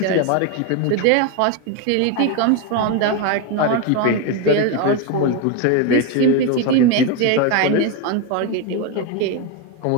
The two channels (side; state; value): both; different; correlation 0.02